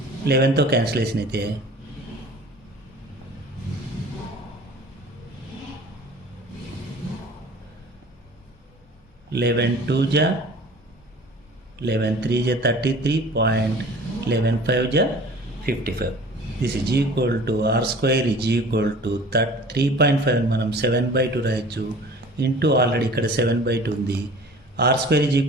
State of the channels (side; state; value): both; normal; correlation 0.44